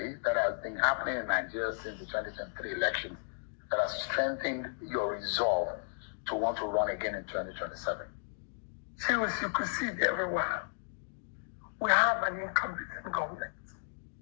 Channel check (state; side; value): silent; right; digital silence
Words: that has been happening in Nigeria since the 2023 elections that has strengthened your resolve to want to run again in 2027? Serious, you could see it everywhere. We have an incompetent government.